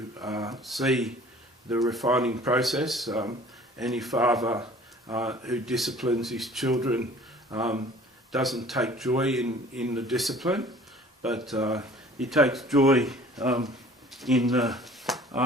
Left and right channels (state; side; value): normal; both; correlation 0.50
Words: see the refining process. Any father who disciplines his children doesn't take joy in the discipline, but he takes joy in the